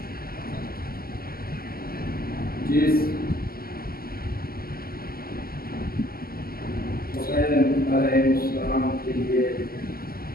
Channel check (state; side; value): late; right; 0.43 ms